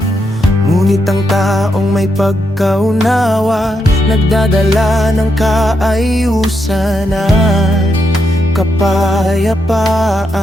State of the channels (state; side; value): normal; both; correlation 0.81